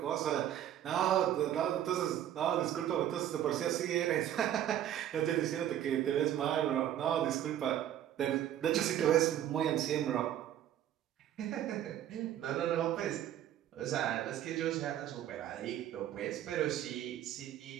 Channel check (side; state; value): left; quieter; 11.3 dB